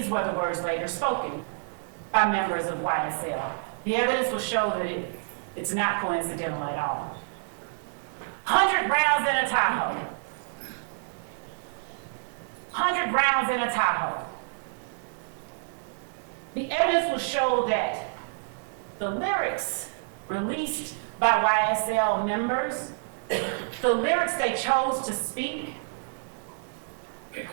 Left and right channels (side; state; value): left; silent; digital silence